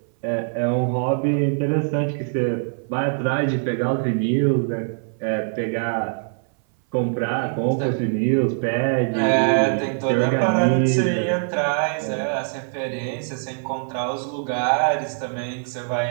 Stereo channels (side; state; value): left; silent; 58 dB below the other